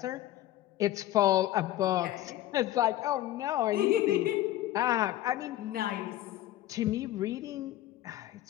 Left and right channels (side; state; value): right; quieter; 14.2 dB